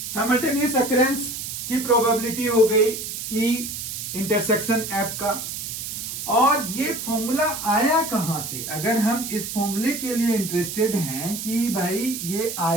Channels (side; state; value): right; noise; hiss, 6 dB below the sound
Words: साइमल्टेनियस अकरेंस की प्रोबेबिलिटी हो गई ई इंटरसेक्शन एफ का। और ये फॉर्मूला आया कहां से, अगर हम इस फॉर्मूले के लिए इंटरेस्टेड हैं कि भाई ये